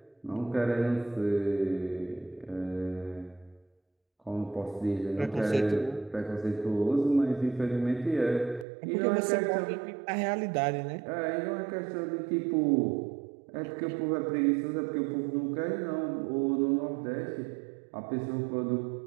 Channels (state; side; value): drops out; left; at 8.7 s